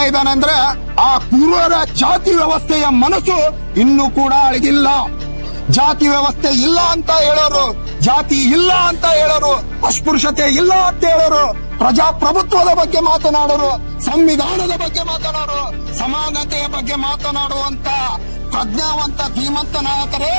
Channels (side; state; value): both; inverted; correlation -1.00